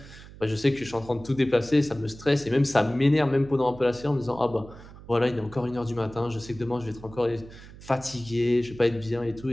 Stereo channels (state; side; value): noise; right; hum, 18 dB below the sound